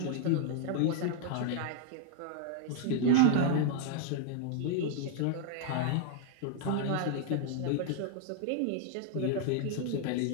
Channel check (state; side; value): different; both; correlation -0.01